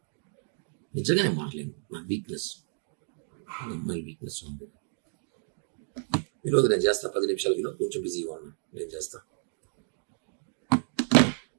నిజంగా నేను మారలేను. నా వీక్నెస్ అమ్మాయి వీక్నెస్ ఉంది. ఈరోజు నేను చేస్తా 10 నిమిషాలకి కొంచెం బిజీగా ఉన్నా. నేను చేస్తా.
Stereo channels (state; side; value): silent; left; digital silence